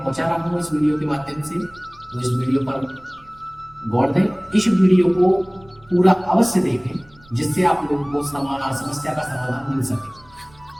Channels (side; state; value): right; noise; rumble, 28 dB below the sound